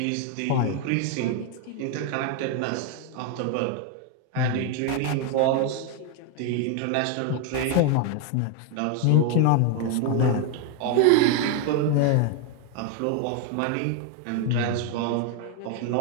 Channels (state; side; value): different; both; correlation 0.01